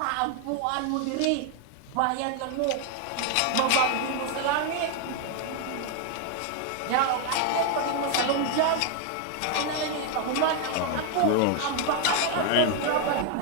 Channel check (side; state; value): both; different; correlation 0.01